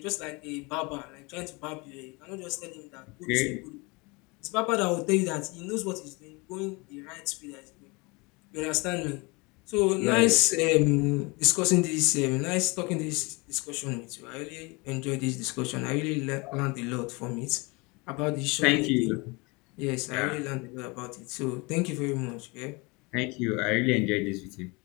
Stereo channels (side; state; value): right; quieter; 27.2 dB